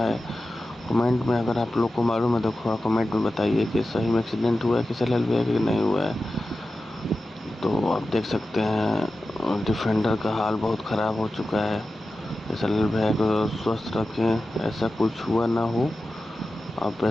कमेंट में अगर आप लोग को मालूम है तो थोड़ा कमेंट में बताइए कि सही में एक्सीडेंट हुआ है किशन है कि नहीं हुआ है। तो आप देख सकते हैं डिफेंडर का हाल बहुत ख़राब हो चुका है। किशन भैया को स्वस्थ रखें, ऐसा कुछ हुआ ना हो। अब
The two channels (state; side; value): normal; both; correlation 0.93